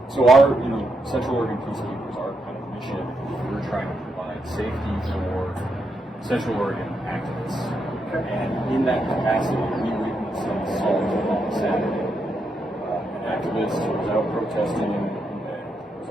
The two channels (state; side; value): normal; both; correlation 0.81